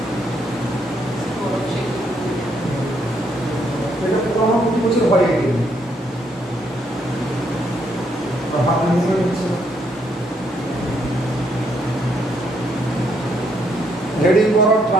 এটা পুরো আমার প্রতি বছর হয়ে গেছে, হাত মুভমেন্ট হচ্ছে। হেডিং করো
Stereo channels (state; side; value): normal; both; correlation 0.73